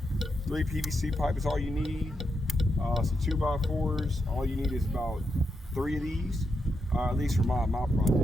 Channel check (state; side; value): normal; both; correlation 0.84